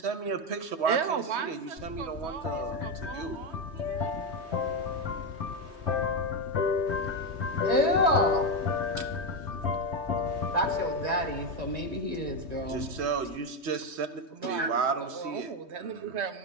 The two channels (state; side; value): late; left; 3.2 ms